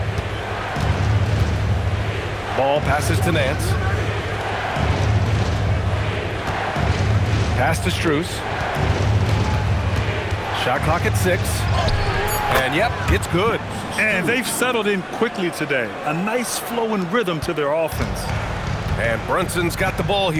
Ball passes to Nance. Pass to Strus. Shot clock at 6. And yep, it's good. And they've settled in quickly today. A nice flow and rhythm to their offense. And Brunson's got the ball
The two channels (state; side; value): identical; both; correlation 1.00